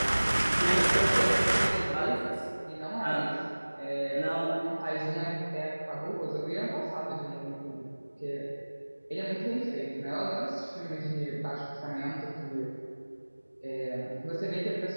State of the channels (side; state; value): both; inverted; correlation -1.00